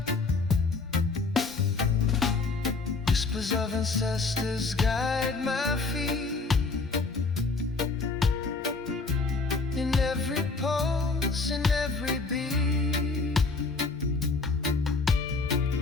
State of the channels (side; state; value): right; quieter; 3.9 dB